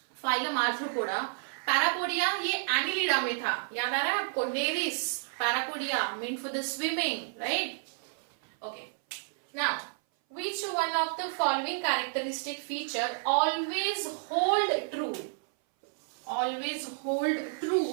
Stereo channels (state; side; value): silent; left; 57 dB below the other